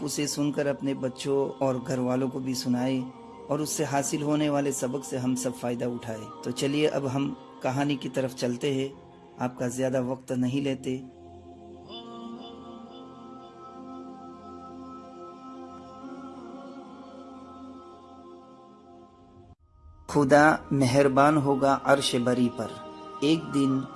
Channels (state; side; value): identical; both; correlation 1.00